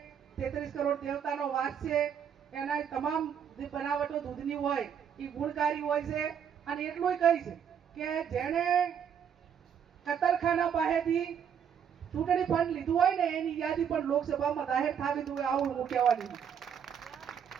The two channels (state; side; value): quieter; left; 8.1 dB